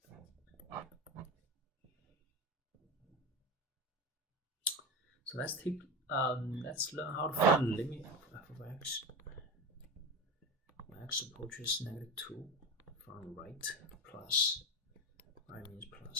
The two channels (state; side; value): normal; both; correlation 0.23